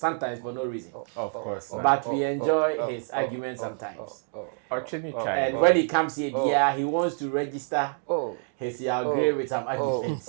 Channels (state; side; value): silent; left; 60 dB below the other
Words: for no reason. Of course. But we enjoy his arguments sometimes. And when he comes here, he wants to register his agree with some arguments.